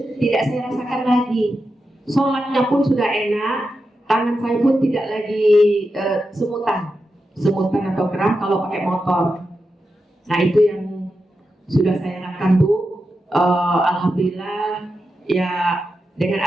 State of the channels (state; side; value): normal; both; correlation 0.89